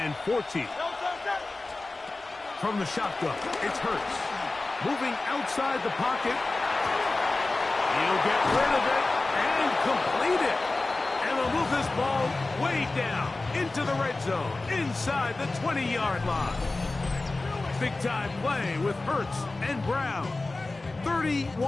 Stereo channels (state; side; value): quieter; right; 3.2 dB